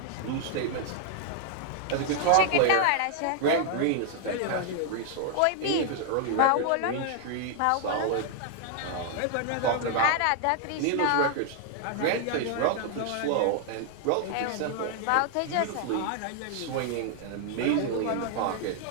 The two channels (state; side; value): different; both; correlation 0.00